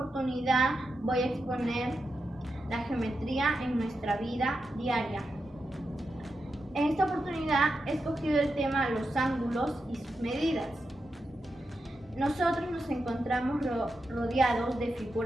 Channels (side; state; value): both; normal; correlation 0.88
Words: voy a exponer la geometría en nuestra vida diaria. En esta oportunidad he escogido el tema los ángulos y sus medidas. Nosotros nos encontramos rodeados de